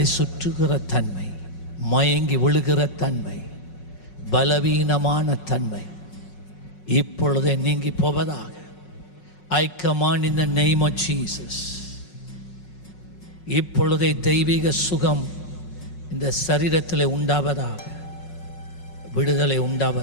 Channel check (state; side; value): late; right; 5.4 ms